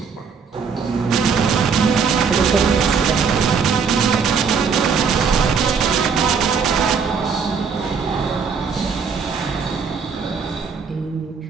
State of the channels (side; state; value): left; quieter; 5.8 dB